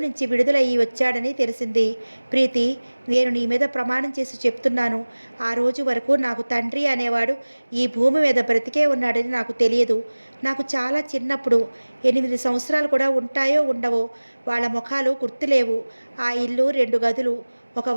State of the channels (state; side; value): inverted; both; correlation -1.00